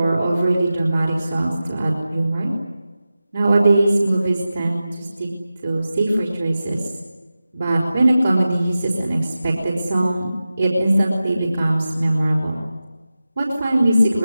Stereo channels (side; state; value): both; inverted; correlation -0.94